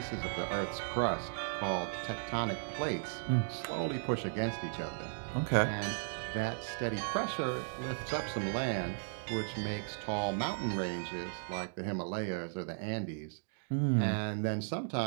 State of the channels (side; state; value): left; silent; digital silence